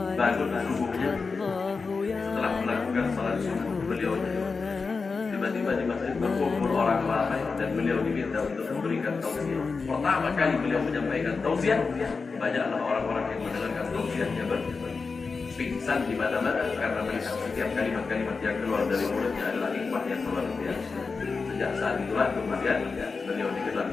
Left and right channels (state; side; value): quieter; right; 4.6 dB